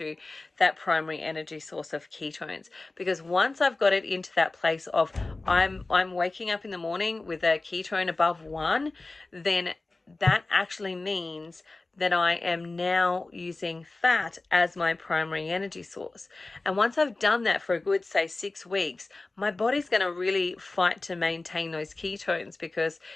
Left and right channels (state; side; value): quieter; right; 3.3 dB